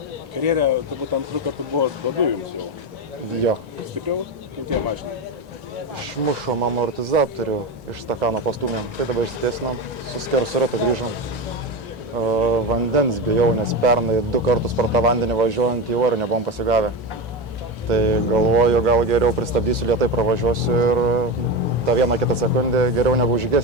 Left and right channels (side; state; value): both; normal; correlation 0.18